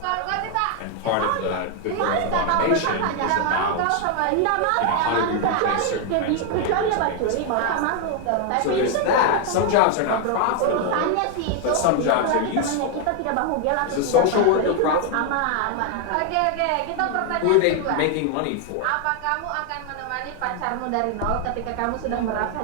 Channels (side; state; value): both; different; correlation 0.01